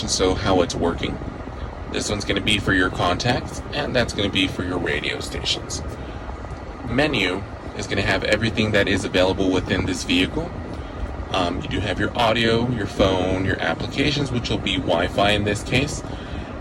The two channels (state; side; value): identical; both; correlation 1.00